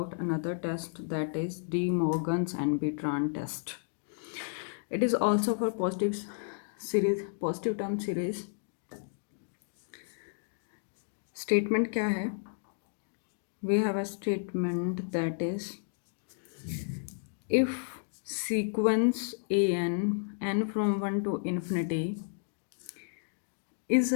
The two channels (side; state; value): right; silent; digital silence